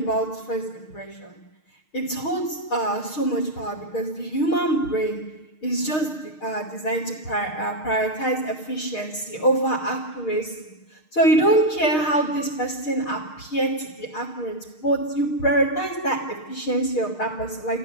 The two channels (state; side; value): late; right; 6.5 ms